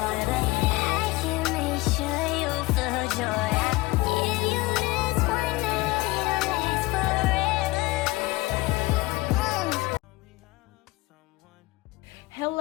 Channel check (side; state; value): right; quieter; 21.0 dB